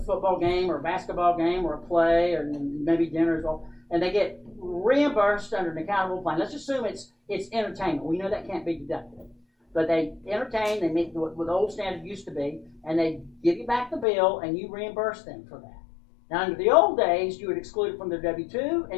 football game or a basketball game or a play or maybe dinner as well, and they get reimbursed under an accountable plan. Let's assume it's entertainment. We know that can't be deducted. But they entertain, they meet what the old standard used to be, and they give you back the bill, and you reimburse them for that. Now, under the old days, you would exclude it from their W-2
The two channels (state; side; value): drops out; right; at 14.1 s